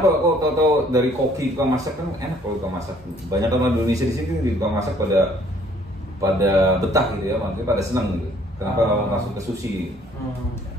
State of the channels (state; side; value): normal; both; correlation 0.60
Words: kok tau dari koki tukang masak kan enak kalau tukang masak. Banyak orang Indonesia di sini di tukang masak pada betah gitu ya, maksudnya pada senang gitu. Kenapa langsung ke sushi?